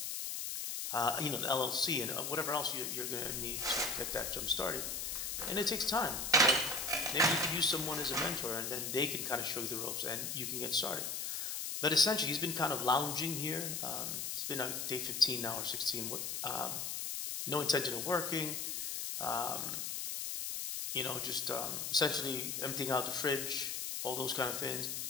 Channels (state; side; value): noise; left; hiss, 3 dB below the sound